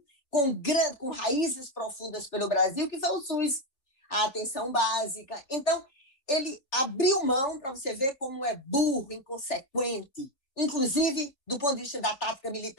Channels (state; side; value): late; right; 3.5 ms